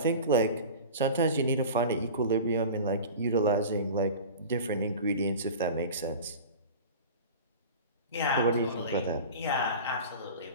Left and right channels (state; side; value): inverted; both; correlation -0.35